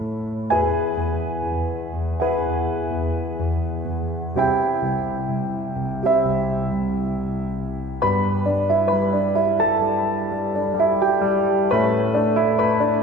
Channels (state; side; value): normal; both; correlation 0.52